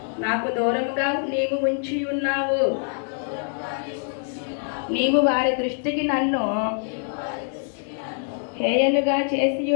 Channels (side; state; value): right; silent; 57 dB below the other